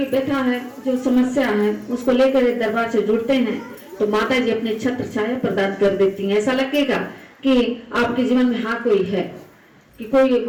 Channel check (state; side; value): identical; both; correlation 1.00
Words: व्यथा है, जो समस्या है, उसको लेकर दरबार से जुड़ते हैं तो माता जी अपने छत्र छाया प्रदान कर देती हैं। ऐसा लगेगा कि आपके जीवन में हाँ कोई है, कि कोई